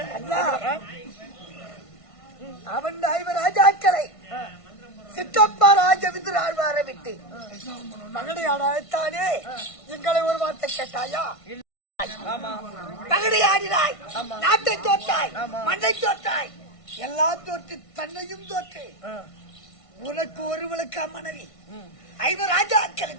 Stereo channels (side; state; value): right; late; 1.5 ms